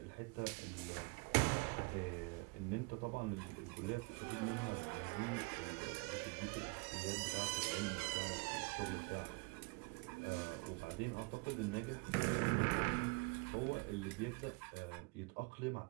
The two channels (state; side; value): quieter; left; 29.4 dB